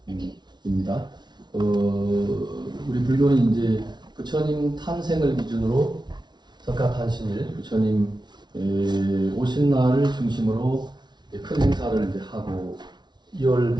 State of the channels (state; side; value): late; left; 0.20 ms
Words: 우리 불교는 이제 부처님 탄생을 기준으로 석가탄신일 부처님 오신 날을 중심으로 큰 행사를 이제 하고 2월